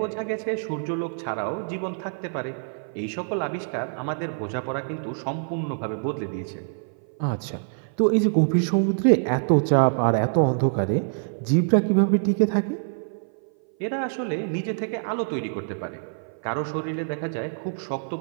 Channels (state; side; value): silent; left; 57 dB below the other